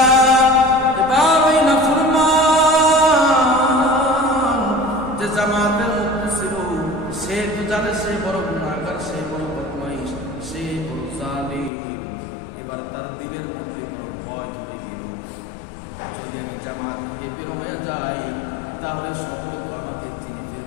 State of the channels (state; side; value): drops out; right; at 11.7 s